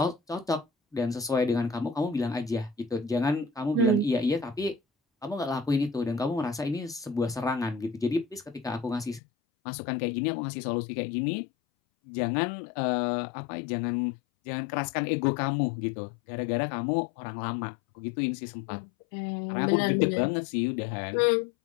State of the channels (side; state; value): right; drops out; at 9.2 s